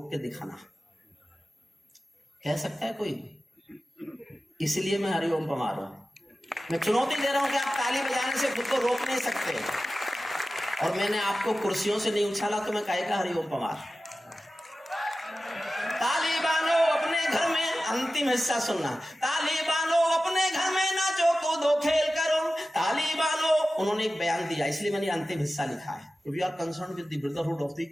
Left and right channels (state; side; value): normal; both; correlation 0.95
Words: के दिखाना। कह सकता है कोई? इसलिए मैं हरिओम पमार रहा हूं। मैं चुनौती दे रहा हूं कि आप ताली बजाने से खुद को रोक नहीं सकते। और मैंने आपको कुर्सियों से नहीं उछाला तो मैं कहेगा हरिओम पमार। तालिबानों अपने घर में, अंतिम हिस्सा सुनना, तालिबानों अपने घर में नाचो कूदो खेल करो। तालिबानों, उन्होंने एक बयान दिया, इसलिए मैंने अंतिम हिस्सा लिखा है। We are concern with the brotherhood of the